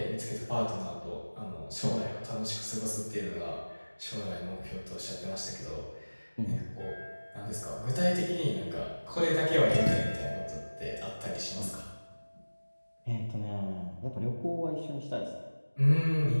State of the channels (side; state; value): both; inverted; correlation -1.00